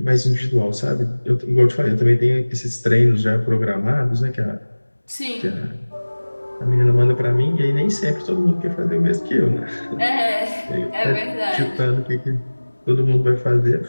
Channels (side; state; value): both; inverted; correlation -1.00